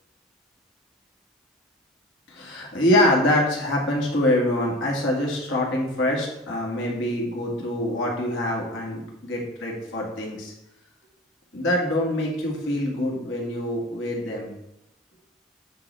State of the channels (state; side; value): normal; both; correlation 0.33